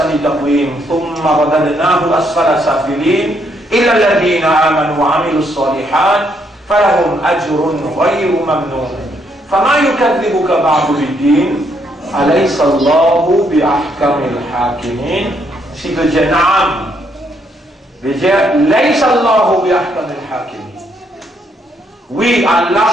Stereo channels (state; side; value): normal; both; correlation 0.73